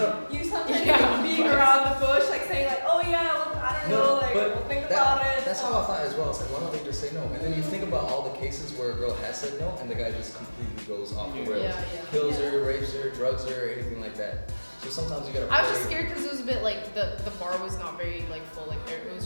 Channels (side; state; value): both; inverted; correlation -1.00